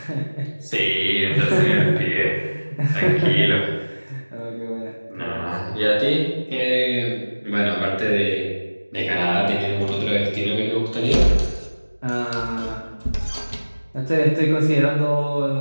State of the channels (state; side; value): inverted; both; correlation -1.00